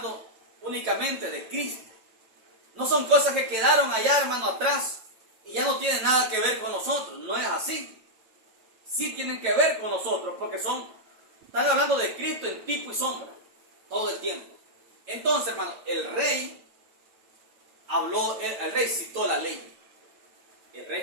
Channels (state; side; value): late; left; 9.1 ms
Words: únicamente de Cristo. No son cosas que quedaron allá, hermano, atrás y ya no tienen nada que ver con nosotros. No es así. Sí tienen que ver con nosotros porque están hablando de Cristo en tipo y sombra todo el tiempo. Entonces, hermano, el rey citó la ley. El rey